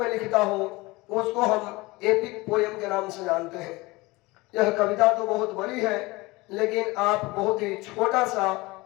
लिखता हो, उसको हम एपिक पोयम के नाम से जानते हैं। यह कविता तो बहुत बड़ी है, लेकिन आप बहुत ही छोटा सा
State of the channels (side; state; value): right; quieter; 22.4 dB